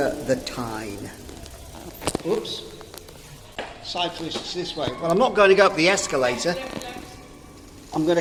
the Tyne. Oops. Cyclists this way. Well, I'm not going to go up the escalator. I'm going to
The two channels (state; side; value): identical; both; correlation 1.00